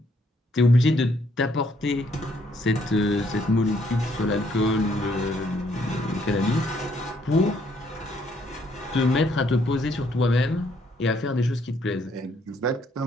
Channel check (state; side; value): normal; both; correlation 0.69